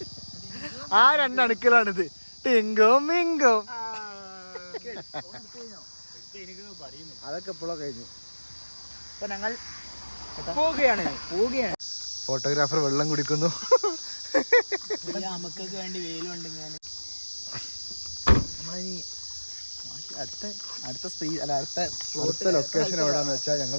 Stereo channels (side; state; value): both; inverted; correlation -1.00